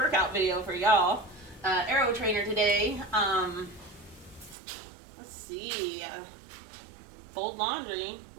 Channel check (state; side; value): drops out; left; at 4.5 s